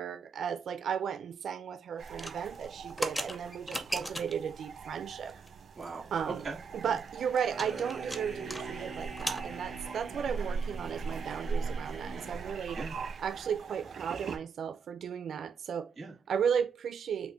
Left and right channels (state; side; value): quieter; left; 5.9 dB